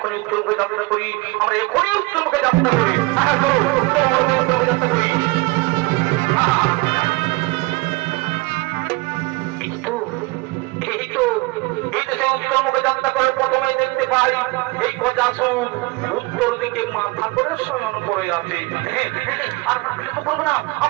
উত্তর মুখে যাত্রা করি, আমরা এখনই উত্তর মুখে যাত্রা করি, যাত্রা করি। উত্তর মুখে যাত্রা করে প্রথমে দেখতে পাই এই গজাসুর উত্তর দিকে মাথা করে শয়ন করে আছে। আমরা বিলম্ব করবো না,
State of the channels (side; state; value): left; quieter; 23.5 dB